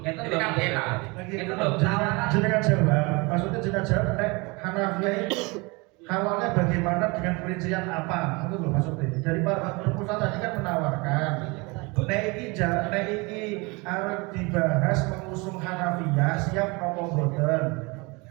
Ini kan enak. Itu loh. Jenengan jawab, maksudnya jenengan jawab Hanafiyah itu halalnya bagaimana dengan perincian apa? Itu loh maksudnya. Dari Pak Rumus tadi kan menawarkan. Nek iki arep dibahas mengusung Hanafiyah siap nopo boten.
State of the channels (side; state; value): left; quieter; 27.0 dB